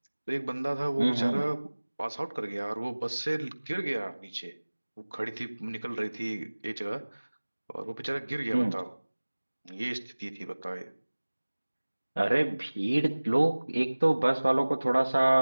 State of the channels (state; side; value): inverted; both; correlation -1.00